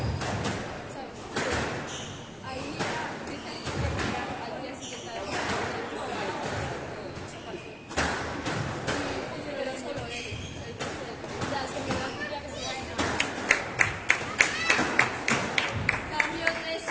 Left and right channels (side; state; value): both; identical; correlation 1.00